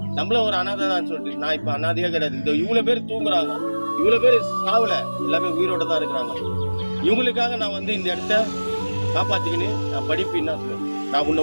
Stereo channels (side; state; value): both; inverted; correlation -1.00